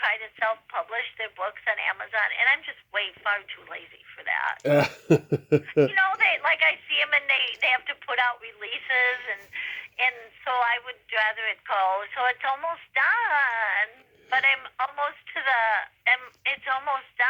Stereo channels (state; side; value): identical; both; correlation 1.00